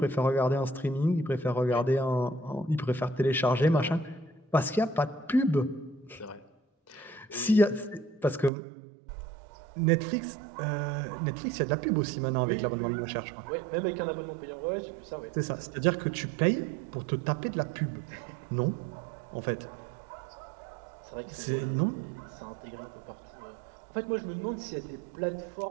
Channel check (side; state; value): left; drops out; at 8.5 s